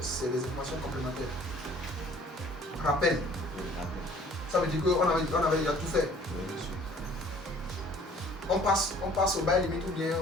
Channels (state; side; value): normal; both; correlation 0.53